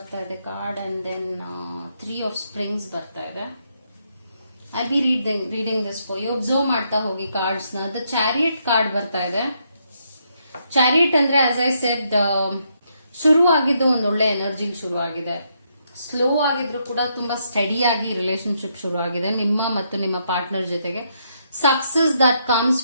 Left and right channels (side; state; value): both; inverted; correlation -0.76